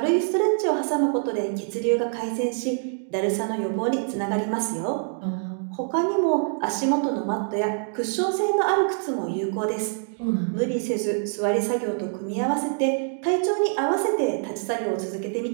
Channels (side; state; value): left; silent; 62 dB below the other